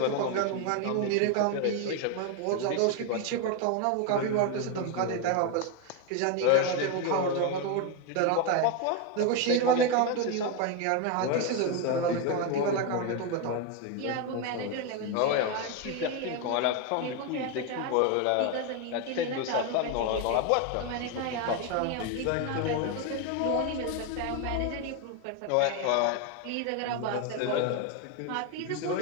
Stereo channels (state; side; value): different; both; correlation 0.01